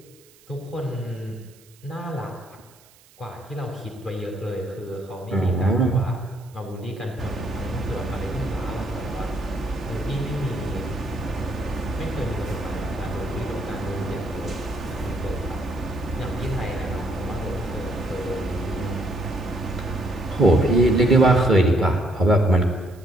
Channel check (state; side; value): noise; right; hiss, 27 dB below the sound